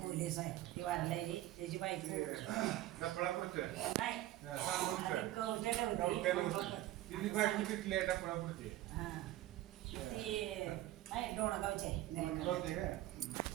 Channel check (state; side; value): quieter; left; 15.2 dB